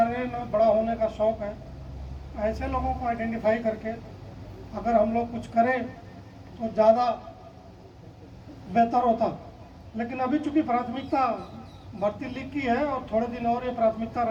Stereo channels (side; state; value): both; identical; correlation 1.00